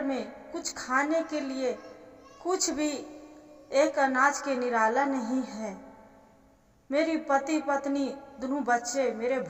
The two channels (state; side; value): identical; both; correlation 1.00